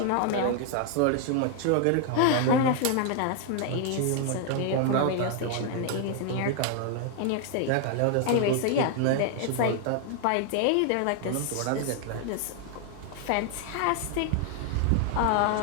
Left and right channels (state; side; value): different; both; correlation 0.00